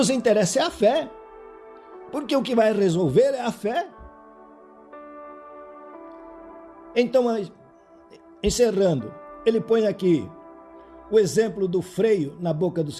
interessa é a fé. Porque o que vai resolver é a fé. Então, encerrando, ele põe aqui o exemplo do freio na boca dos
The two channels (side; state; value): both; identical; correlation 1.00